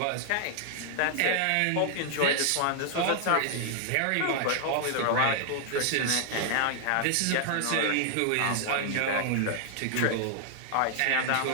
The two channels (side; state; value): both; different; correlation 0.00